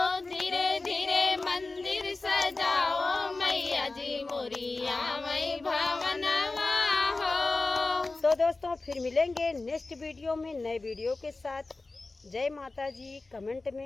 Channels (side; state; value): right; quieter; 3.4 dB